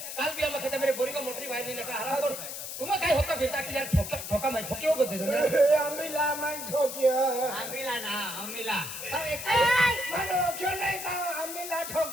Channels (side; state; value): left; noise; hiss, 7 dB below the sound